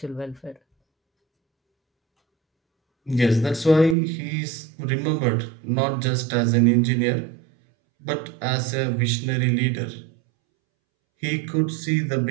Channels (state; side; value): drops out; left; at 4.0 s